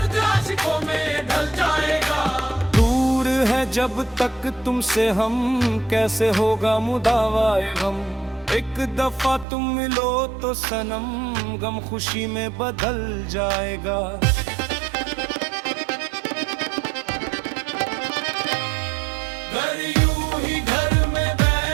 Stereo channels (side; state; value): left; drops out; at 9.5 s